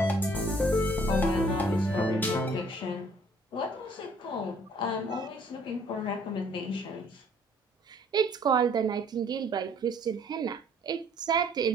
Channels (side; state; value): both; normal; correlation 0.59